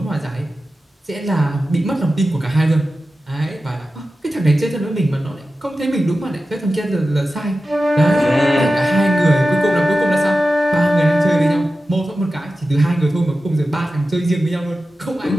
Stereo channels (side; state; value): both; normal; correlation 0.93